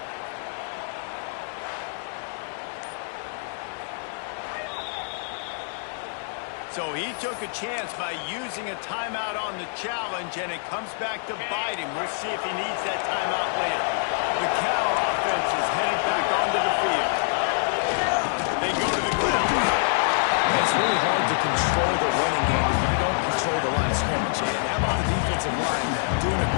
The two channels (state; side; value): silent; right; digital silence